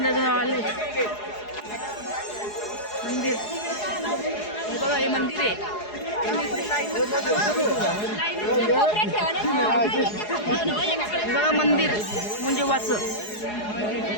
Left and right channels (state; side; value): late; right; 4.8 ms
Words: आलोय. मंदिर बघा, हे मंदिर आहे. बघा मंदिर मुंजोबाचं.